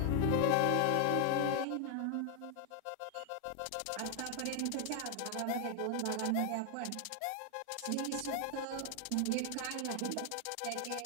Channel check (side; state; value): both; different; correlation 0.00